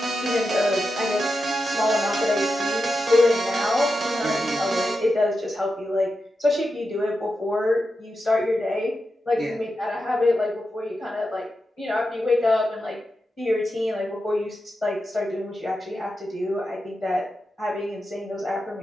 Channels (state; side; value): normal; both; correlation 0.89